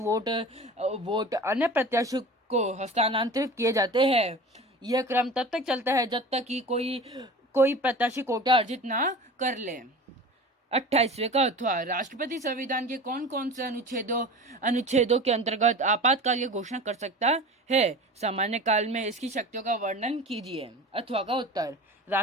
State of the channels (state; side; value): normal; both; correlation 0.36